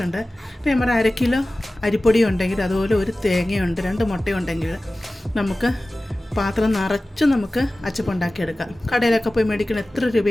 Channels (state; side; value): normal; both; correlation 0.97